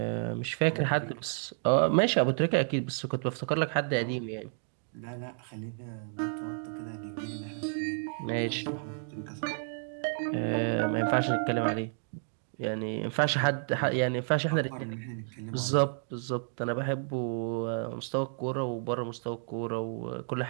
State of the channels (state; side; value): silent; left; digital silence